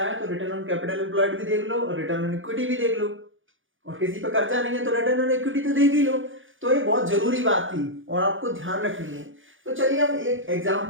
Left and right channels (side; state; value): left; late; 0.57 ms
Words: है तो रिटर्न ऑन कैपिटल एम्प्लॉयड भी देख लो और रिटर्न ऑन इक्विटी भी देख लो, और किसी पर कर्जा नहीं है तो रिटर्न ऑन इक्विटी तो देख ही लो। तो ये बहुत जरूरी बात थी और आपको ध्यान रखनी है। तो चलिए हम एक